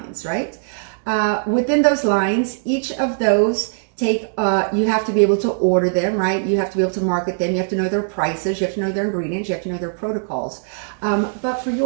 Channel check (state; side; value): silent; left; digital silence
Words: right? Within those lines, each of those you have to be able to order them, right? You have to be able to market them. You have to know their prices. You have to know their ingredients. You have to know their protocols. But for